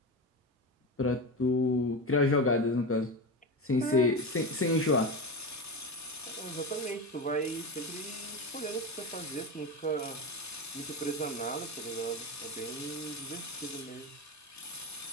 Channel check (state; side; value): normal; both; correlation 0.20